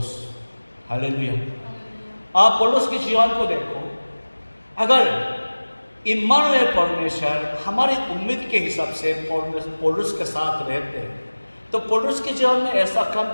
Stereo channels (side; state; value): both; inverted; correlation -1.00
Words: हालेलुया। आप पौलुस के जीवन को देखो, अगर इम्मानुएल परमेश्वर हमारी उम्मीद के हिसाब से पौलुस के साथ रहते हैं तो पौलुस के जीवन में ऐसा काम